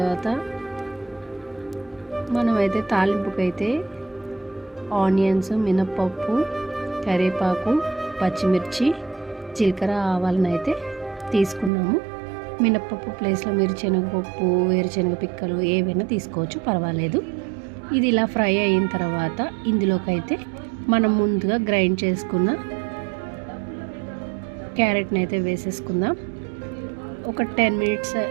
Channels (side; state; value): left; drops out; at 11.7 s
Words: మనమైతే తాలింపుకైతే ఆనియన్స్, మినప్పప్పు, కరివేపాకు, పచ్చిమిర్చి, జీలకర్ర, ఆవాలను అయితే తీసుకున్నాము. మినప్పప్పు ప్లేస్లో మీరు శనగపప్పు, వేరుశనగ పిక్కలు ఏవైనా తీసుకోవచ్చు, పర్వాలేదు. ఇది ఇలా ఫ్రై అయిన తర్వాత ఇందులోకైతే మనం ముందుగా గ్రైండ్ చేసుకున్న క్యారెట్ని అయితే వేసేసుకుందాం. ఒక 10 మినిట్స్